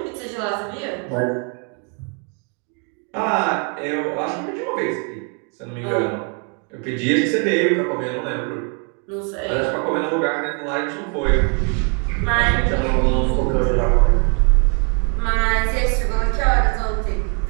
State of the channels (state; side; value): quieter; left; 38.5 dB